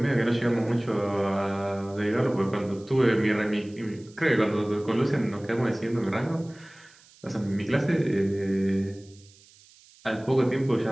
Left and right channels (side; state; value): right; noise; hiss, 26 dB below the sound